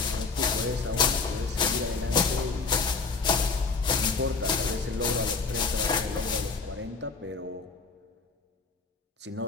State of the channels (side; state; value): right; quieter; 4.4 dB